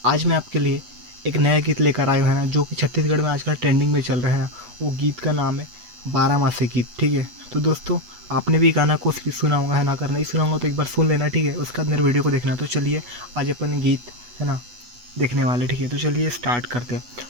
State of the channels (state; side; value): late; left; 8.2 ms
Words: आज मैं आपके लिए एक नया गीत लेकर आया हूं है ना, जो कि छत्तीसगढ़ में आजकल ट्रेंडिंग में चल रहा है ना। वो गीत का नाम है बारामासी गीत। ठीक है, तो दोस्तों आपने भी गाना को सुना होगा है ना। अगर नहीं सुना होगा तो एक बार सुन लेना, ठीक है। उसके बाद मेरे वीडियो को देखना। तो चलिए आज अपन गीत है ना देखने वाले, ठीक है। तो चलिए स्टार्ट करते हैं।